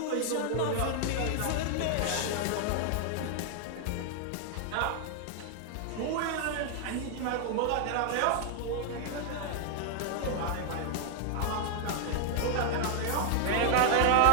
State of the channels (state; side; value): different; both; correlation 0.00